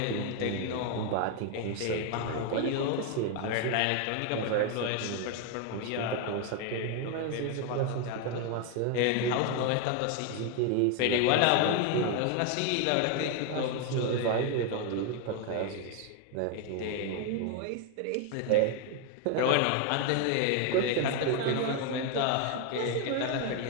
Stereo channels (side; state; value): both; different; correlation 0.01